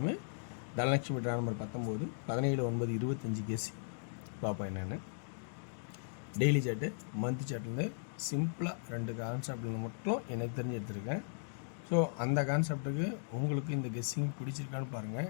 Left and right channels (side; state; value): right; silent; digital silence